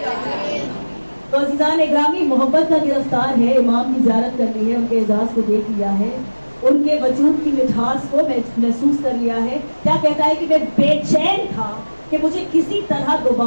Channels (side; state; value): both; inverted; correlation -1.00